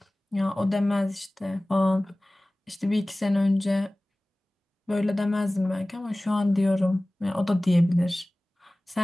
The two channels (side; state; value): both; normal; correlation 0.98